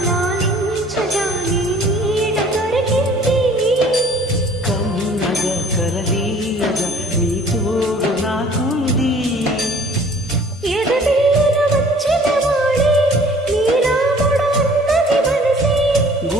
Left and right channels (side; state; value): both; normal; correlation 0.53